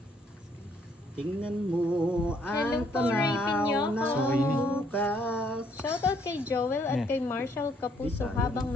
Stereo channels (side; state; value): both; normal; correlation 0.67